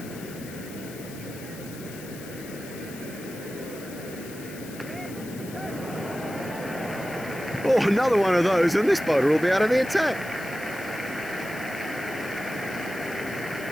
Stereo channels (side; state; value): left; noise; hiss, 16 dB below the sound